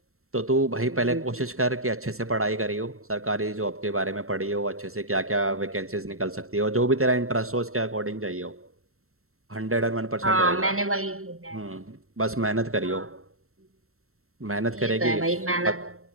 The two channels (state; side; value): late; left; 0.63 ms